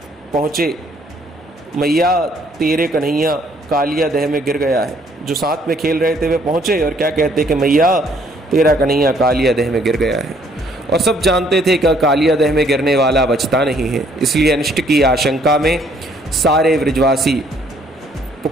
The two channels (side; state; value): both; normal; correlation 0.64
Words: पहुँचे, मैया तेरे कन्हैया कालिया दह में गिर गया है। जो साथ में खेल रहे थे वे पहुँचे और क्या कहते कि मैया तेरा कन्हैया कालिया दह में गिर गया है। और सब जानते थे कि कालिया दह में गिरने वाला बचता नहीं है, इसलिए अनिष्ट की आशंका में सारे ब्रजवासी